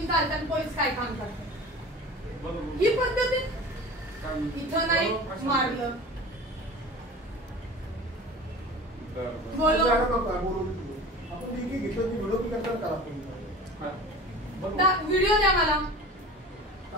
चालतात पोलीस काय काम करतात ही पद्धत इथं नाही मारलं व्हिडिओ द्या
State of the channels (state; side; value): normal; both; correlation 0.37